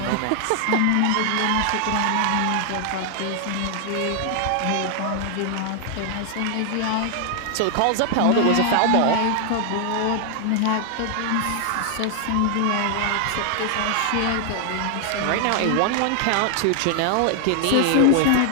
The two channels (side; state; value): both; different; correlation 0.00